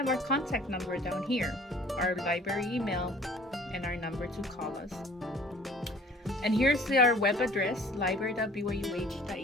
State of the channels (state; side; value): normal; both; correlation 0.51